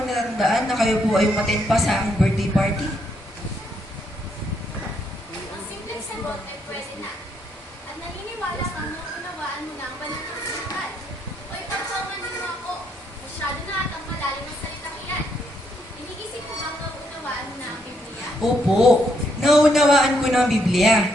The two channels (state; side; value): normal; both; correlation 0.75